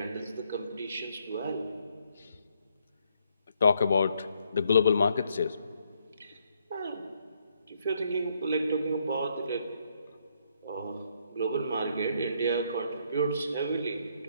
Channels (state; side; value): inverted; both; correlation -0.72